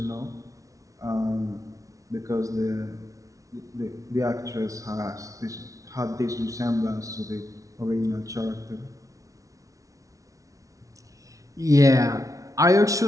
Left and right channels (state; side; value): late; left; 0.16 ms